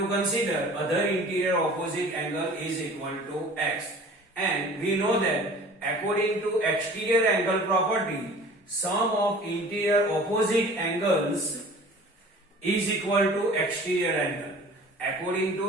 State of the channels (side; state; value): both; normal; correlation 0.45